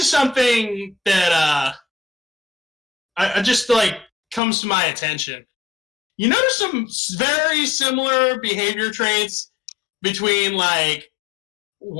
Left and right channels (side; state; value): right; drops out; at 4.4 s